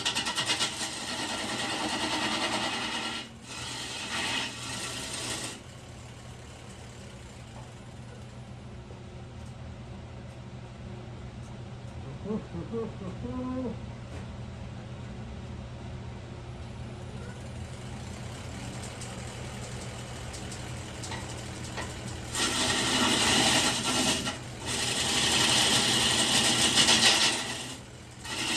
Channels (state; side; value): identical; both; correlation 1.00